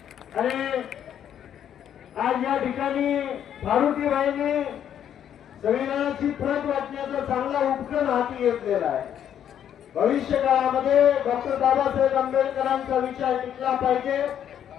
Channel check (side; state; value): right; quieter; 9.7 dB